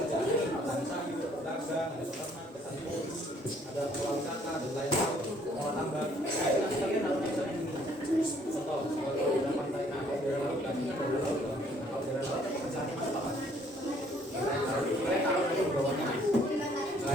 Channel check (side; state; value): both; normal; correlation 0.63